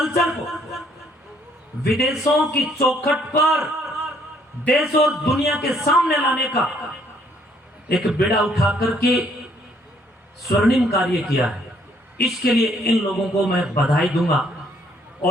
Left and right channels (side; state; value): both; normal; correlation 0.66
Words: को विदेशों की चौखट पर देश और दुनिया के सामने लाने का एक बेड़ा उठा करके स्वर्णिम कार्य किया है। इसके लिए इन लोगों को मैं बधाई दूंगा